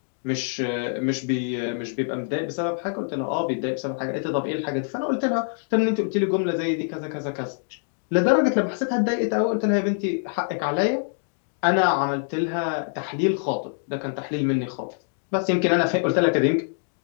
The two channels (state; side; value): silent; right; digital silence